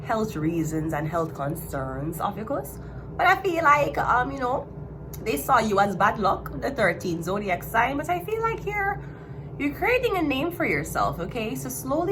health reasons and health concerns, OPHIUCHUS. But I feel like, they saw you as bad luck, the 13th zodiac sign, but I feel like you're creating a name for yourself, okay? So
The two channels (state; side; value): identical; both; correlation 1.00